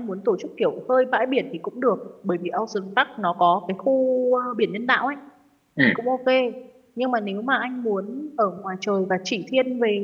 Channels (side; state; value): both; identical; correlation 1.00